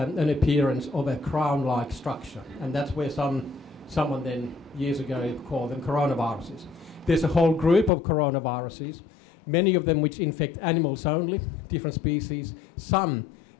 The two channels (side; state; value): right; drops out; at 7.9 s